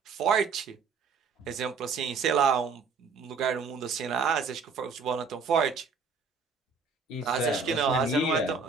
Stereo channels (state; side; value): quieter; left; 5.0 dB